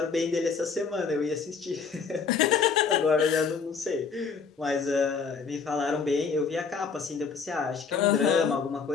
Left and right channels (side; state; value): right; quieter; 5.6 dB